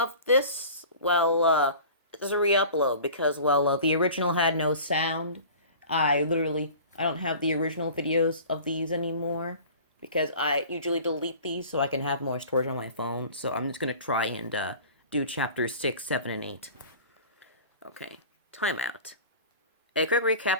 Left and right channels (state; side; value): inverted; both; correlation -0.42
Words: this, it's a re-upload because, the original had no sound. I don't have the original videos of these anymore because I usually delete these so I can have more storage on my phone. So I'm just gonna try and do chapters 6, 7, and 8. Okay, timeout. A quick